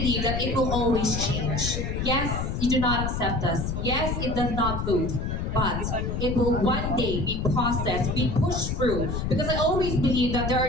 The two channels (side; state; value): left; noise; rumble, 2 dB below the sound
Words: that it will always change. Yes, you do not accept us. Yes, it does not move. But it will one day be processed, be pushed through. Because I always believe that there